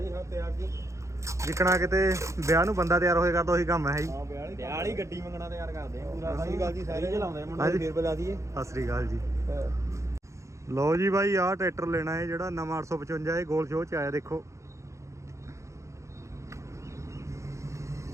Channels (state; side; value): late; left; 0.14 ms